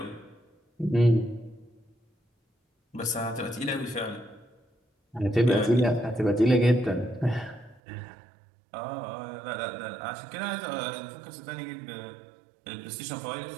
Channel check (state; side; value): drops out; left; at 7.8 s